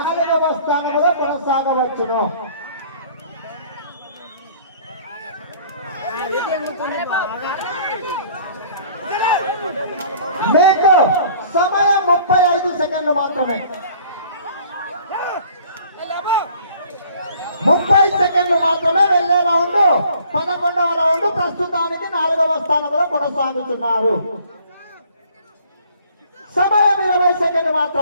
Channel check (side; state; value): both; inverted; correlation -0.55